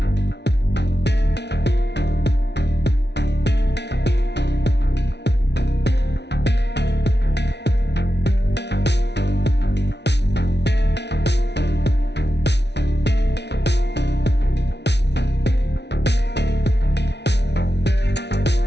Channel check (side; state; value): right; late; 0.50 ms